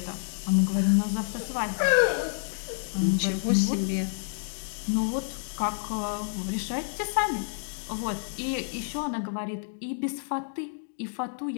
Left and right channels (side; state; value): right; silent; digital silence